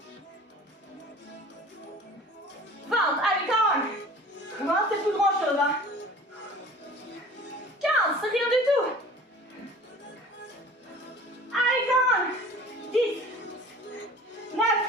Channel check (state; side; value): normal; both; correlation 0.44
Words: 20. Allez, come on. 20, c'est plus grand chose. Hein. 15, c'est rien du tout. Allez, come on. 10. 9.